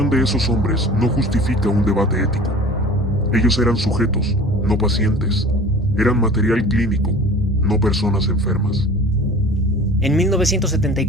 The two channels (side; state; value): both; normal; correlation 0.42